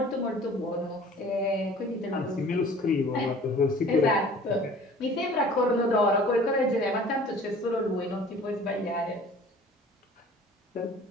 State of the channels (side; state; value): both; normal; correlation 0.48